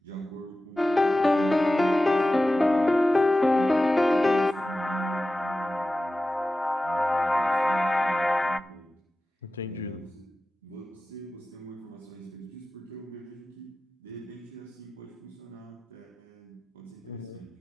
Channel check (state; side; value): normal; both; correlation 0.94